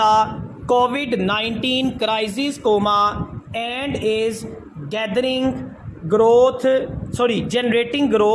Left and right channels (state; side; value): identical; both; correlation 1.00